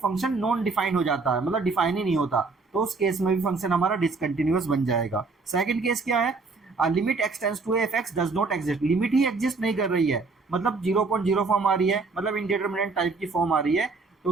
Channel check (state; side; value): quieter; left; 4.1 dB